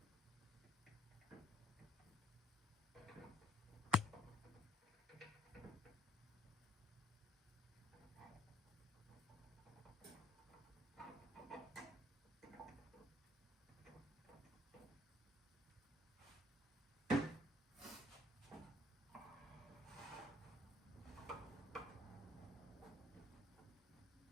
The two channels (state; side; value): normal; both; correlation 0.64